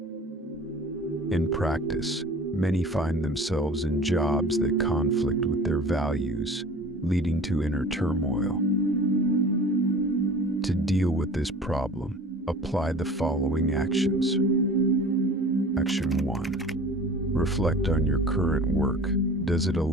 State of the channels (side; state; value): both; normal; correlation 0.42